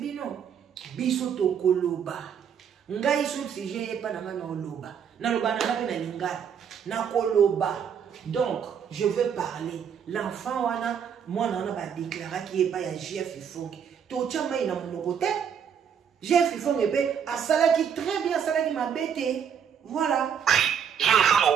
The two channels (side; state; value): left; quieter; 7.8 dB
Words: biso to koloba ngai sur sujet pas na ngana oloba na loba na pe na lingala na koloba donc je veux parler l'enfant wana moi na ba déclarer qui est pas ya Jeff Ifongi to chama ina monoko te Jeff Ifongi pe asala qui très bien asala qui m'a bêté voilà je